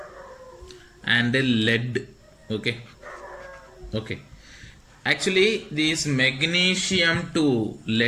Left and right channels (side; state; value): both; identical; correlation 1.00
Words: and lead. Okay, actually this magnesium to